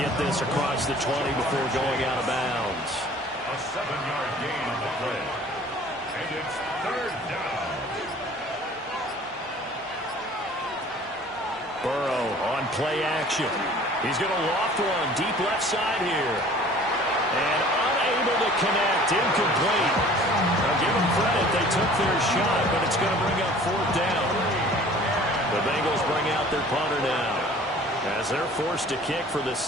this across the 20 before going out of bounds. A 7-yard gain on the play. And it's 3rd down. Burrow on play action. He's going to loft one deep left side here. And unable to connect. Incomplete. Now give them credit. They took their shot, but it's going to bring up 4th down. The Bengals bring out their punter now, as they're forced to kick for the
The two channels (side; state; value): both; normal; correlation 0.49